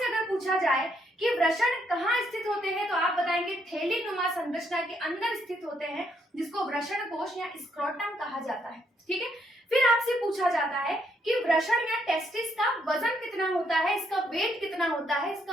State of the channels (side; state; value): both; normal; correlation 0.74